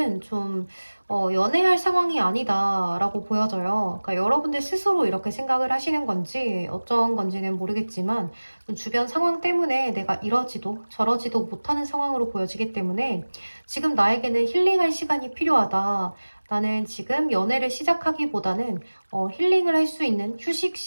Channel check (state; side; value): inverted; both; correlation -1.00